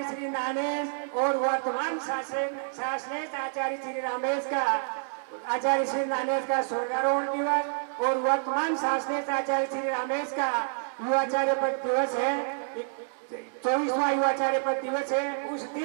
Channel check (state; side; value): silent; left; digital silence